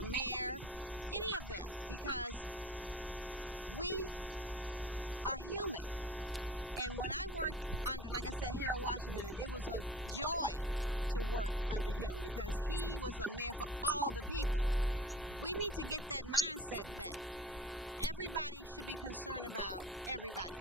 mayor, any of them, because we are human. And when I worked under, like I said, Harold Washington, it was a joy to work under him, because he was a mayor for all the people. We need to get that mindset back. Everybody should be concerned about everybody,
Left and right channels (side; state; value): both; normal; correlation 0.41